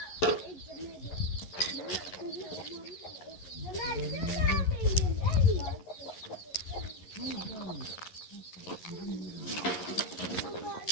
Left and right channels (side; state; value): right; late; 11 ms